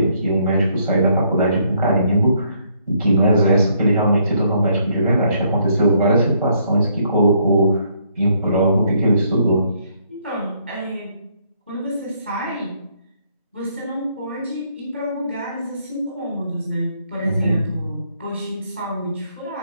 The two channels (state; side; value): inverted; both; correlation -0.69